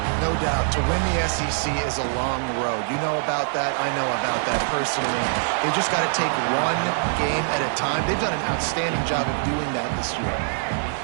No doubt. To win the SEC is a long road. You know about that. I know about that personally. They just got to take one game at a time. They've done an outstanding job of doing that this year.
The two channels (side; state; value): left; silent; digital silence